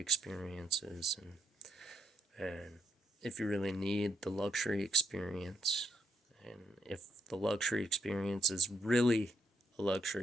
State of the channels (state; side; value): normal; both; correlation 0.76